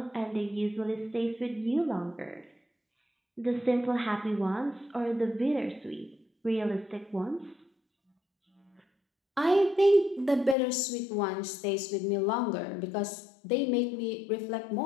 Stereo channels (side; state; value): right; drops out; at 10.6 s